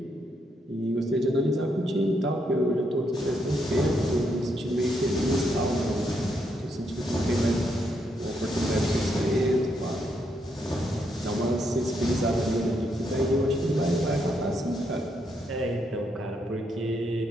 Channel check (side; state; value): both; normal; correlation 0.78